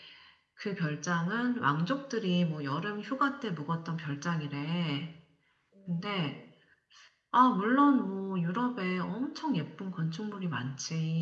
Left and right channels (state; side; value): identical; both; correlation 1.00